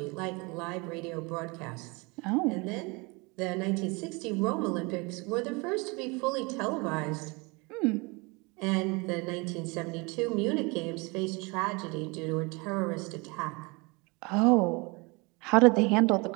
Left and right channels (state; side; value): quieter; left; 27.7 dB